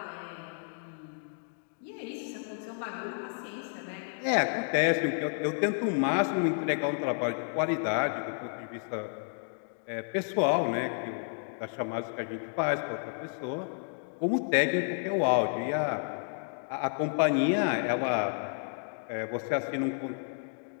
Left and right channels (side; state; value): right; silent; digital silence